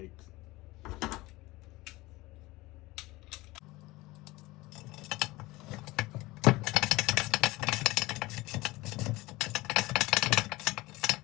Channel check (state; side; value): quieter; right; 20.5 dB